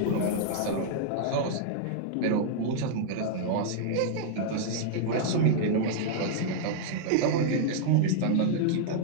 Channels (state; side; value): different; both; correlation -0.01